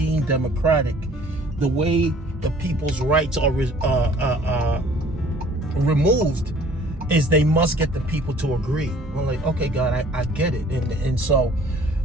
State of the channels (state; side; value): normal; both; correlation 0.54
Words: democratic, the way the people's rights are removed is they must get the people to agree. I'm like, okay, God, I get it. And so